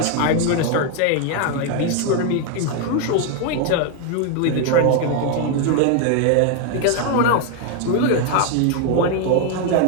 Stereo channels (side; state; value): both; different; correlation 0.01